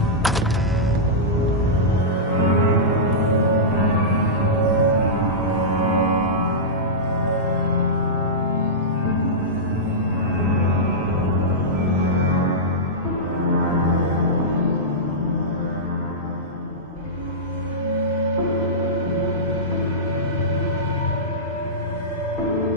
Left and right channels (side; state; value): both; normal; correlation -0.13